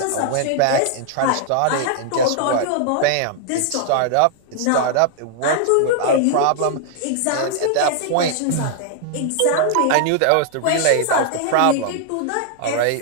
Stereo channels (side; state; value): both; different; correlation 0.00